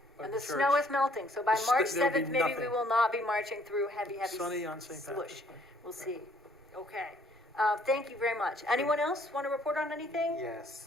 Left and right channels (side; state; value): both; normal; correlation 0.63